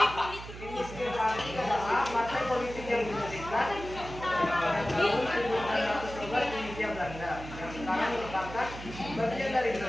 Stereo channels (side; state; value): right; noise; hum, 12 dB below the sound